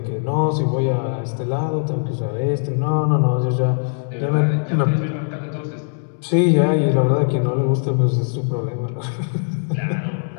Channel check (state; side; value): silent; right; digital silence